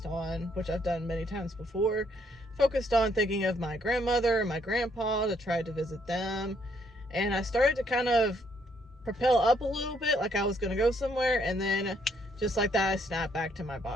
on, which I've done many times before, focused on thinking of my grandmother and my grandpa to try to visit them. And I started to kind of propel up a little bit, like I was going to go somewhere, and then just like that, I snapped back to my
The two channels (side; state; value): both; normal; correlation 0.70